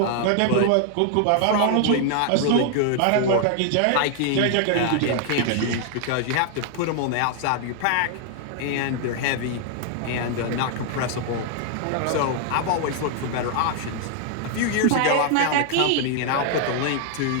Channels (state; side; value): different; both; correlation 0.00